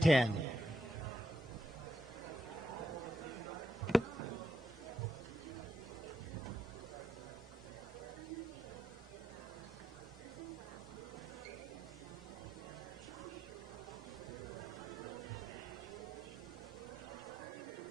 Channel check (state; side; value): normal; both; correlation 0.81